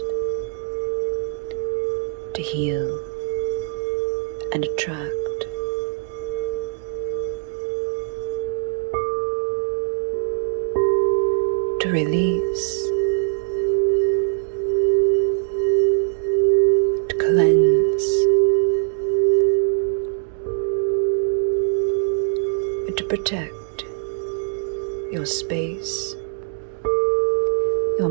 to heal and attract, to release, to cleanse, and to protect your space, your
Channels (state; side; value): silent; left; 64 dB below the other